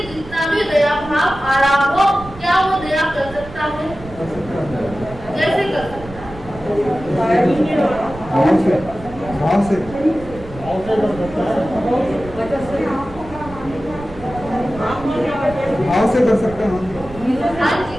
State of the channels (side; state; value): right; noise; rumble, 16 dB below the sound